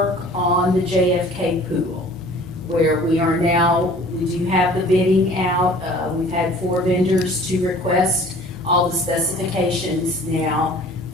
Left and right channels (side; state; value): both; normal; correlation 0.49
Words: on the JFK pool, where we are now, we do have the bidding out. We've had 4 vendors to request all the specifications now,